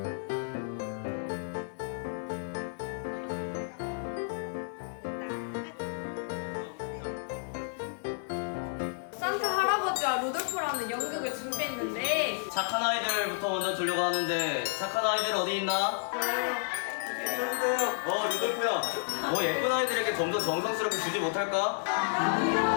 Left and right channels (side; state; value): right; silent; 55 dB below the other